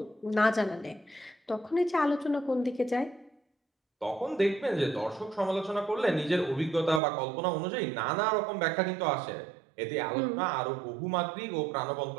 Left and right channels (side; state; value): left; drops out; at 7.0 s